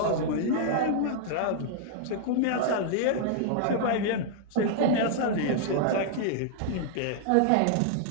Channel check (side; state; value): both; different; correlation -0.01